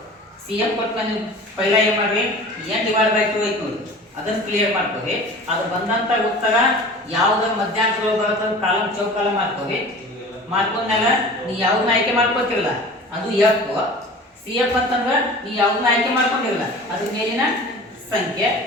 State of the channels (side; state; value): both; normal; correlation 0.40